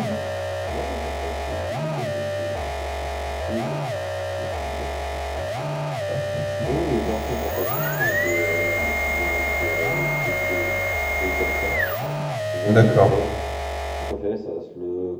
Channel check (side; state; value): both; identical; correlation 1.00